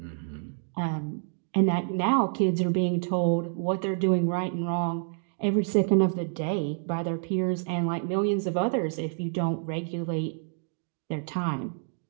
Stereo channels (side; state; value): left; silent; 59 dB below the other